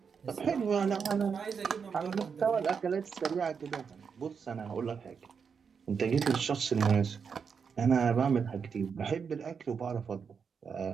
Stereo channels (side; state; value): left; quieter; 6.2 dB